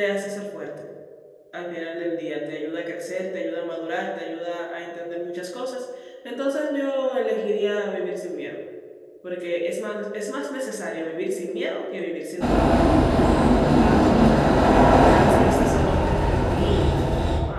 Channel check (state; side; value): identical; both; correlation 1.00